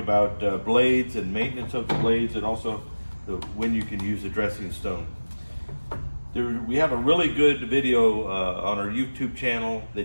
blades and maintenance of the blades, and also when you can use a dressing stone. We have a really good video on our YouTube channel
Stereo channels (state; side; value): inverted; both; correlation -1.00